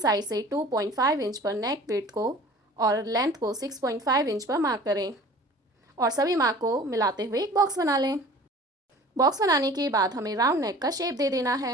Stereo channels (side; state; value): both; normal; correlation 0.45